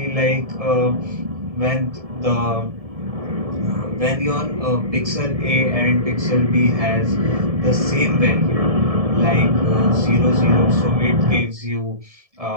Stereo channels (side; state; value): left; late; 1.7 ms